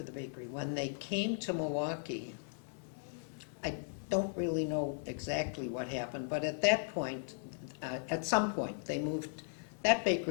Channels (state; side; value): silent; right; 53 dB below the other